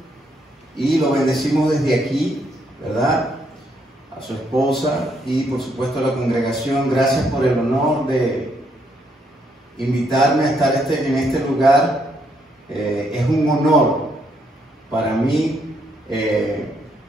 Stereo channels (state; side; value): normal; both; correlation 0.74